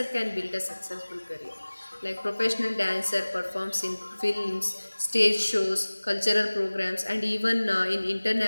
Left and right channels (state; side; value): inverted; both; correlation -1.00